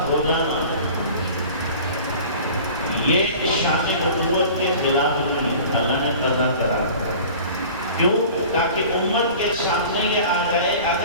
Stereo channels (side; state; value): both; inverted; correlation -0.42